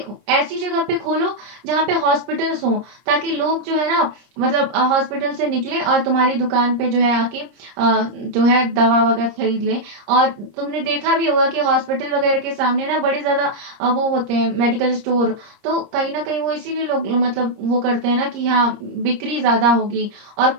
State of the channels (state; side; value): late; left; 30 ms